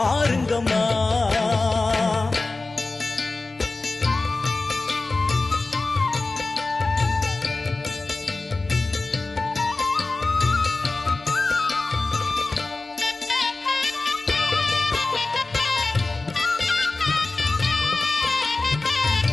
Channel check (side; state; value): right; quieter; 3.4 dB